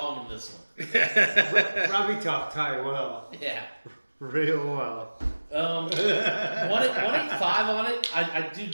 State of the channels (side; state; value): both; inverted; correlation -1.00